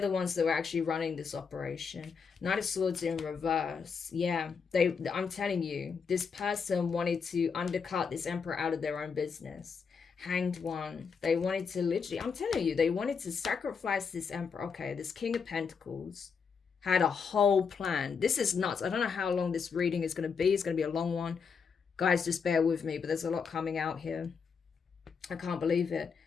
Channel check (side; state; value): right; quieter; 5.9 dB